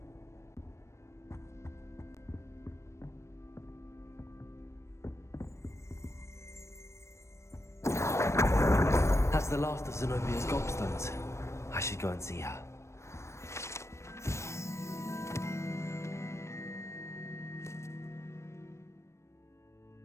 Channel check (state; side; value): late; right; 0.13 ms